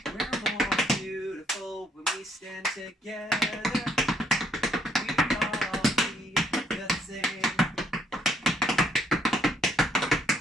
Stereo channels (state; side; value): normal; both; correlation 0.68